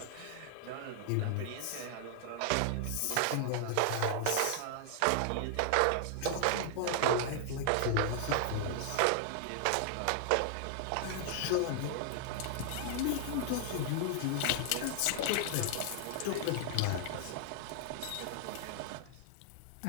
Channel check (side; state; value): both; different; correlation 0.00